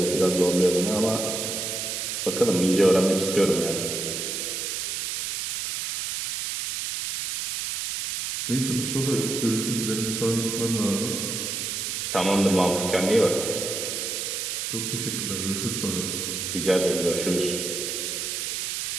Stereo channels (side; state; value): right; noise; hiss, 2 dB below the sound